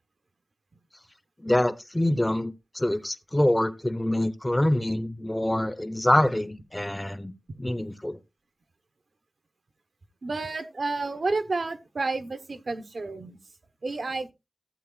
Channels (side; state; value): both; normal; correlation 0.98